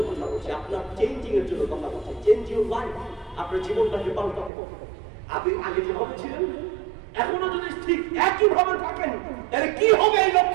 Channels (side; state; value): left; drops out; at 4.5 s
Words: কথা বলছি, আপনার চেঞ্জিং এর জন্য কথা বলছি। চেঞ্জ ইউর লাইফ, আপনার জীবনটাকে পাল্টাতে হবে। আপনি আগে যেভাবে ছিলেন এখনো যদি ঠিক একই ভাবে থাকেন, তাহলে কি হবে? এই